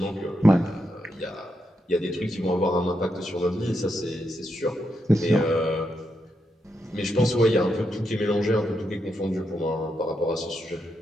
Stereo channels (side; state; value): both; normal; correlation 0.83